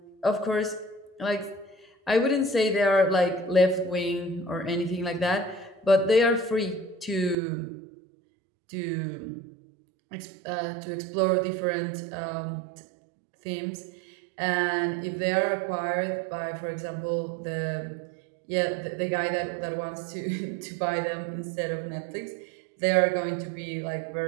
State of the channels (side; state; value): left; drops out; at 7.4 s